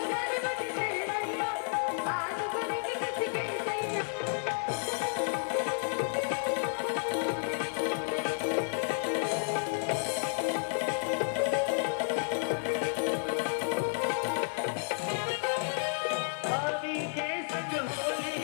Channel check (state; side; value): silent; right; digital silence